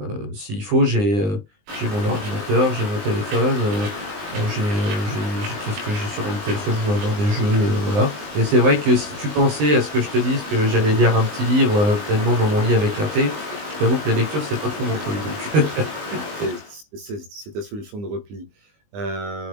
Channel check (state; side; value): late; left; 20 ms